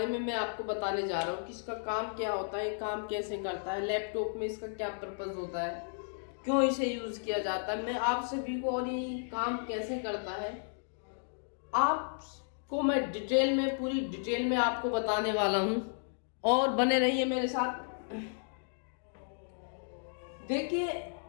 में मैं आपको बताने जा रहा हूँ कि इसका काम क्या होता है, काम कैसे करता है, लैपटॉप में इसका क्या पर्पस होता है, क्यों इसे यूज किया जाता है। मैं आप सभी को और ये काम कैसे करता है आपको मैं डिटेल में, पूरी डिटेल में आपको बताने वाला हूँ और बने रहिए मेरे साथ। देखिए,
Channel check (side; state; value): right; silent; digital silence